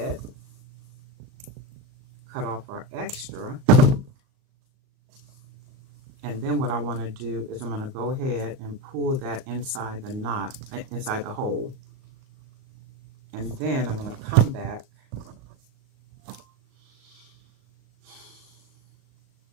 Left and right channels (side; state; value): left; late; 38 ms